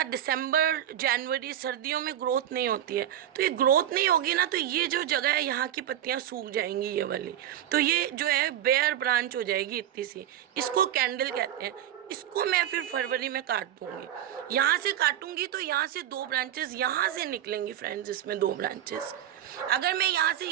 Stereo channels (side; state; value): left; quieter; 11.3 dB